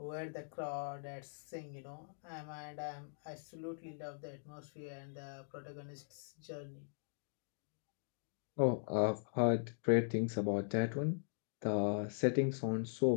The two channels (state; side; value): silent; right; digital silence